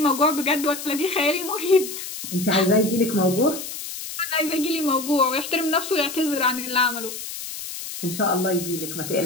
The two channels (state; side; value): noise; left; hiss, 9 dB below the sound